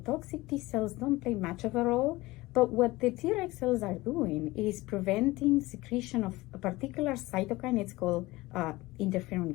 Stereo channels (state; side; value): quieter; right; 20.0 dB